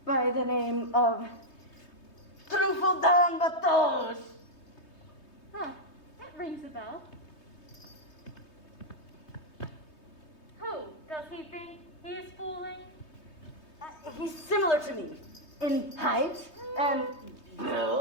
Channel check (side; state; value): right; late; 3.2 ms